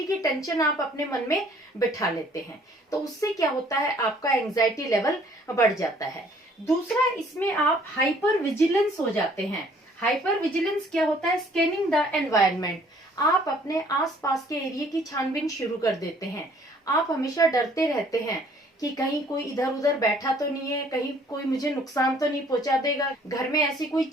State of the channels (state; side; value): normal; both; correlation 0.59